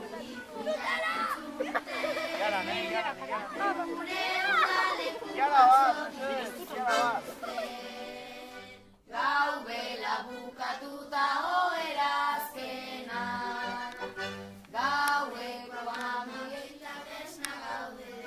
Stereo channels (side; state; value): both; identical; correlation 1.00